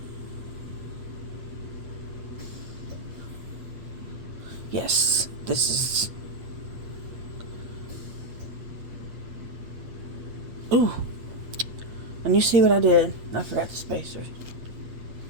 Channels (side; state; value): left; late; 8.6 ms